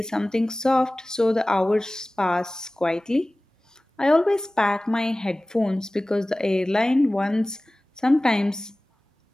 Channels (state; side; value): normal; both; correlation 0.98